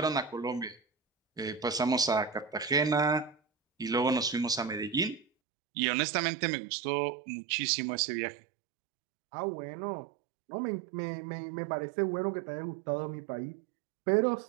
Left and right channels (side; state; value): left; drops out; at 5.2 s